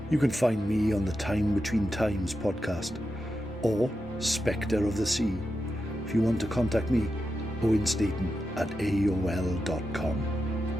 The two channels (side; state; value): both; normal; correlation 0.88